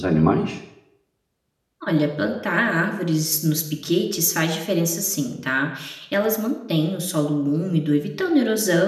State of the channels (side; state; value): both; identical; correlation 1.00